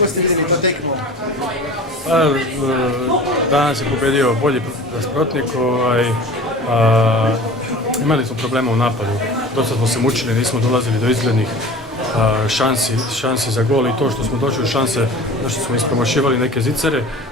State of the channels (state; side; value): normal; both; correlation 0.39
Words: ste videli to tekmo? Danas je pobedio bolji nasprotnik. Imali smo problema u napadu. Dosta smo se mučili, nismo dolazili do izglednih šansi za gol i to što smo došli u šanse, što smo ispromašivali neke zicere.